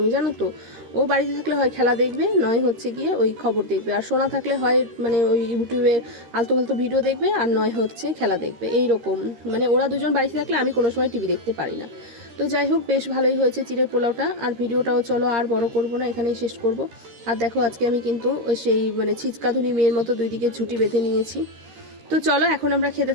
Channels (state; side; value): late; left; 13 ms